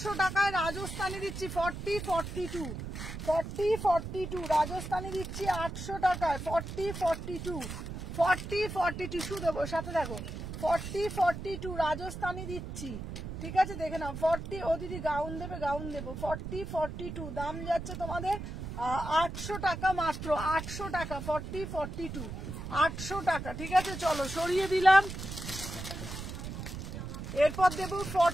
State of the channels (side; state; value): right; noise; rumble, 7 dB below the sound